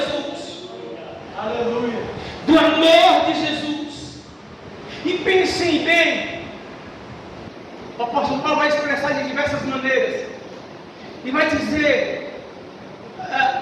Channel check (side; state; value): both; identical; correlation 1.00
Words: e vai dizer,